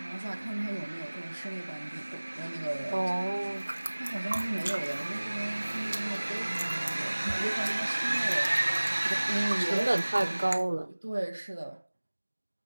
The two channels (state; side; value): inverted; both; correlation -1.00